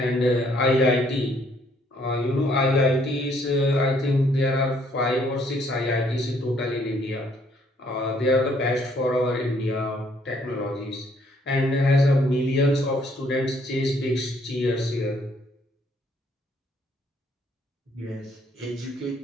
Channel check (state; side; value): normal; both; correlation 0.66